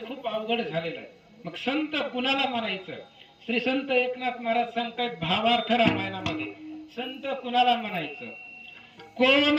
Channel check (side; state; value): both; identical; correlation 1.00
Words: खूप अवघड झालेलं आहे. मग संत कुणाला म्हणायचं. श्री संत एकनाथ महाराज सांगतात भावार्थ रामायणामध्ये संत कुणाला म्हणायचं. कोण